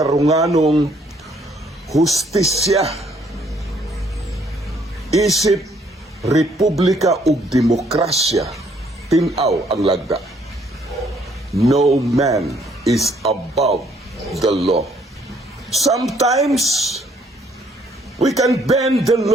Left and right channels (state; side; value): normal; both; correlation 0.65